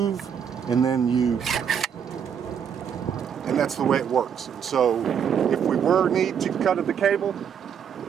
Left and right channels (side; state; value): left; quieter; 7.9 dB